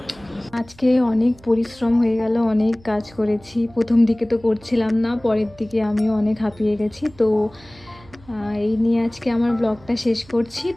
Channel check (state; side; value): noise; right; hum, 24 dB below the sound